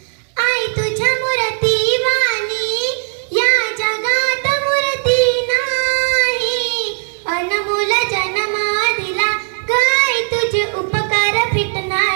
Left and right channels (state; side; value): silent; left; 65 dB below the other